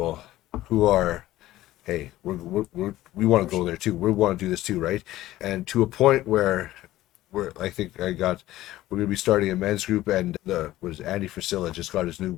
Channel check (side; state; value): right; quieter; 15.6 dB